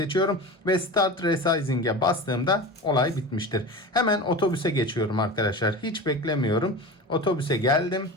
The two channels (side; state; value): both; normal; correlation 0.30